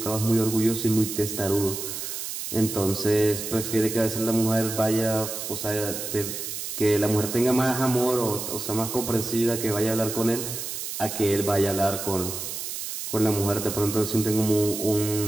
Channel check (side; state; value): right; noise; hiss, 6 dB below the sound